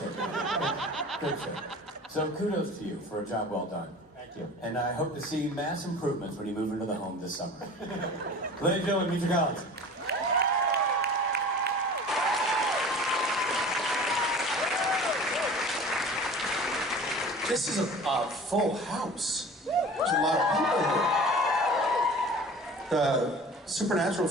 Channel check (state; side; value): normal; both; correlation 0.41